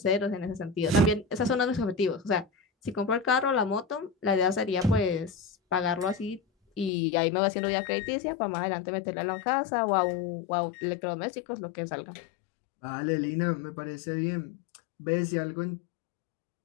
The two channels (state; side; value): drops out; right; at 6.9 s